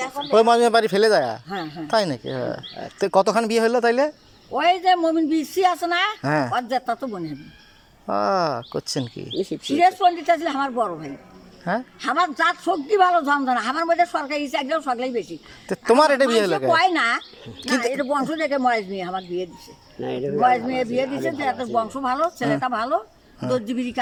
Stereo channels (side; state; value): both; identical; correlation 1.00